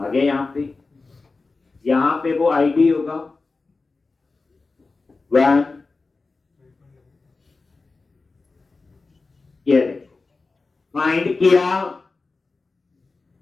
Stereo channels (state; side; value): quieter; right; 3.8 dB